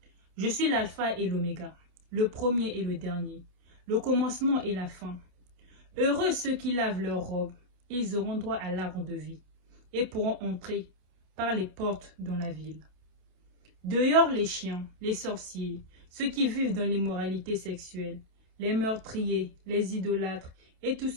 Je suis l'alpha et l'oméga, le premier et le dernier, le commencement et la fin. Heureux ceux qui lavent leurs robes, ils auront droit à l'arbre de vie, et pourront entrer par les portes dans la ville. Dehors les chiens, les sorciers, ceux qui vivent dans l'immoralité sexuelle, les meurtriers, les idolâtres, et tous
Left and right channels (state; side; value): late; left; 27 ms